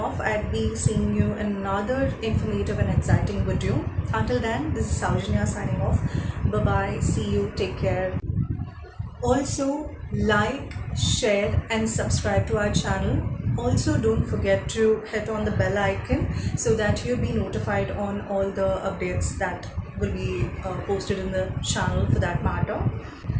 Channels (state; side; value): identical; both; correlation 1.00